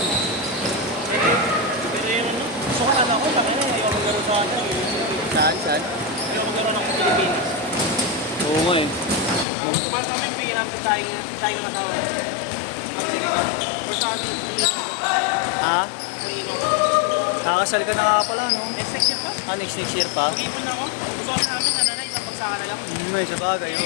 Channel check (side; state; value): right; drops out; at 9.5 s